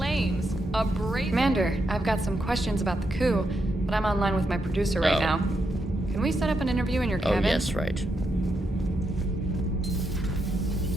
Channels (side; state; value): both; normal; correlation 0.82